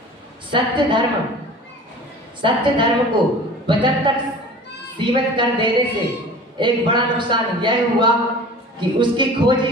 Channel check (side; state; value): both; normal; correlation 0.41